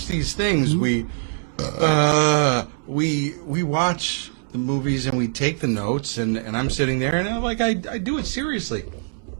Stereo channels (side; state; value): left; silent; digital silence